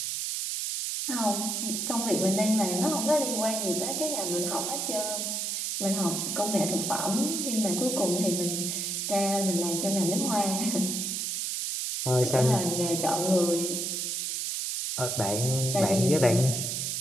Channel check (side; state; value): right; noise; hiss, 1 dB below the sound